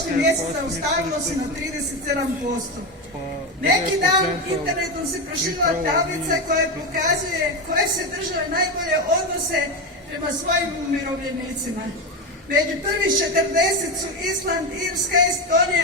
mjesec zaustavilo se na 37%. Neki dan internetom se proširila tablica koja pokazuje koje se države najbolje odnose prema svojim umirovljenicima. Među prvih 40 su Island, Irska,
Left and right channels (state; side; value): normal; both; correlation 0.15